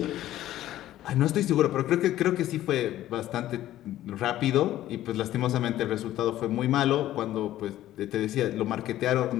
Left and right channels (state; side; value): quieter; right; 13.7 dB